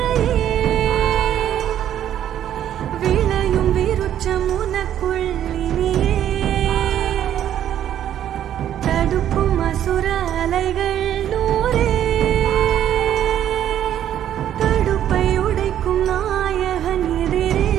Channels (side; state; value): left; quieter; 10.8 dB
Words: விளையும் விருட்சம் உனக்குள் இனியே. தடுக்கும் அசுர அலைகள் நூறே, தடுப்பை உடைக்கும் நாயகன் எதிரே.